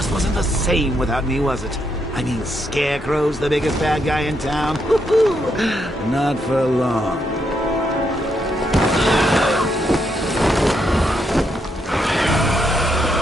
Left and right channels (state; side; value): normal; both; correlation 0.78